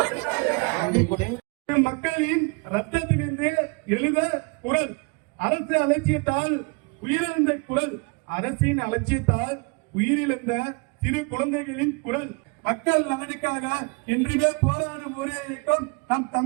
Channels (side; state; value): left; quieter; 31.5 dB